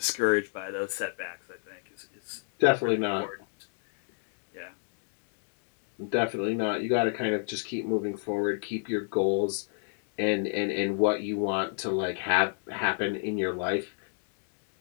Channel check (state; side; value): silent; right; 58 dB below the other